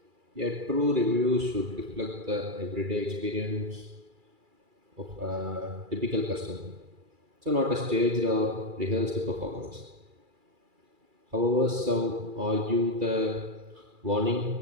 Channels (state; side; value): late; left; 2.3 ms